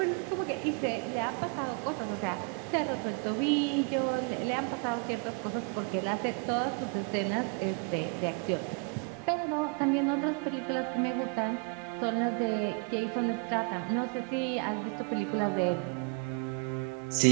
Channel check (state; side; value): quieter; left; 34.6 dB